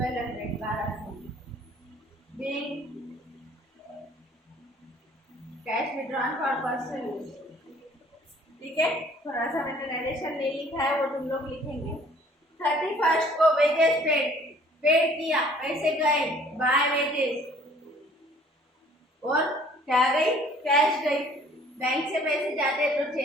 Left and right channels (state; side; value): normal; both; correlation 0.55